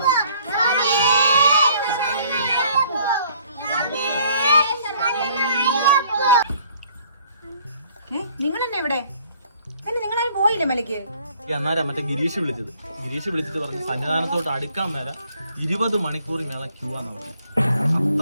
നിങ്ങൾ തന്നെ ഇവിടെ നിങ്ങളാരും പോയില്ലേ മലയ്ക്ക്? അന്നേരം മറ്റേ ഗിരീഷ് വിളിച്ചിട്ട് പറഞ്ഞു സന്നിധാനത്തോട്ട് അടുക്കാൻ മേല 20 മണിക്കൂർ മേള ക്യൂ ആന്ന് പറഞ്ഞു.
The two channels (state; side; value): inverted; both; correlation -0.60